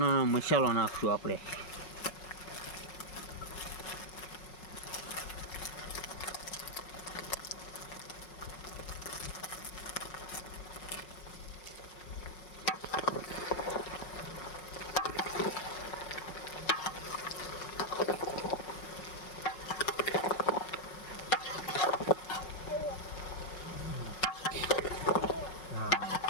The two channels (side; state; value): right; late; 5.4 ms